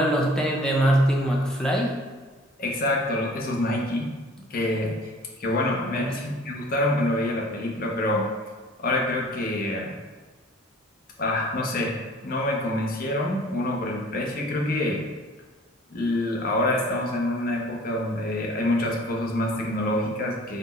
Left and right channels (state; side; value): normal; both; correlation 0.50